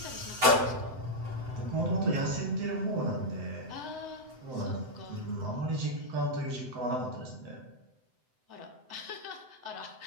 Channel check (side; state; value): left; late; 7.8 ms